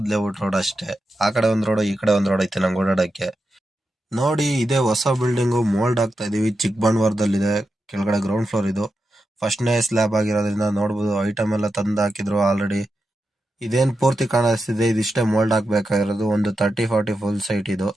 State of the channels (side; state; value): both; normal; correlation 0.88